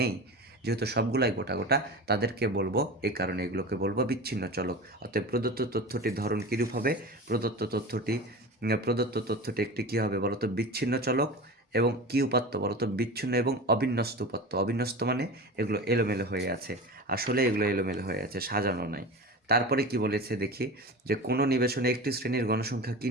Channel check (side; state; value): both; normal; correlation 0.31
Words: যেহেতু সবগুলাই গোটা গোটা, তাদেরকে বলবো, এই কারণে এগুলোকে বলবো বিচ্ছিন্ন চলক। অতএব প্রদত্ত তথ্যটির ধরন কীরূপ হবে? প্রদত্ত তথ্যটি একটি কী হবে বলতো? বিচ্ছিন্ন চলক। এবং কি উপাত্ত বলতো? বিচ্ছিন্ন এবং অবিন্যস্ত উপাত্ত। অবিন্যস্ত মানে এগুলো এলোমেলো হয়ে আছে, আসলে এগুলো এলোমেলো হয়ে আছে, সাজানো নাই। তারপরে কি বলেছে দেখি যে কোনো নিবেশনে একটি শ্রেণীর গণসংখ্যা কি